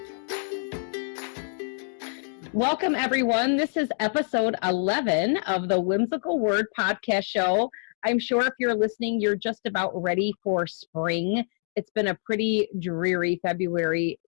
Welcome, everyone. This is episode 11 of the Whimsical Word podcast show. I'm sure if you're listening, you're just about ready for spring. It's been a pretty dreary February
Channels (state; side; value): silent; right; digital silence